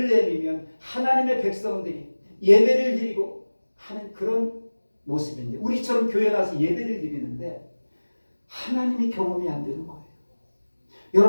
하나님의 백성들이 예배를 드리고 하는 그런 모습인데, 우리처럼 교회 나와서 예배를 드리는데 하나님이 경험이 안 되는 거예요.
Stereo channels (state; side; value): inverted; both; correlation -1.00